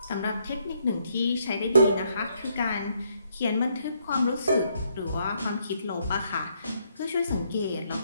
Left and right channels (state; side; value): inverted; both; correlation -0.73